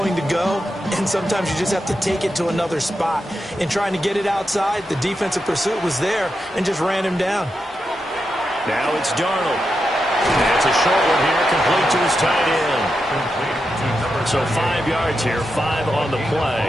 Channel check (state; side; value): normal; both; correlation 0.87